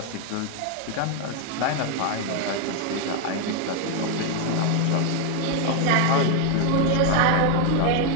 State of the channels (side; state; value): both; different; correlation 0.01